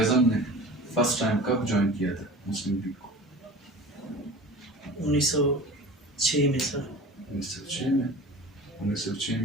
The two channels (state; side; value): normal; both; correlation 0.38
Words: نے فرسٹ ٹائم کب جوائن کیا تھا مسلم لیگ کو؟ 1906 میں سر. 1906 میں. 1906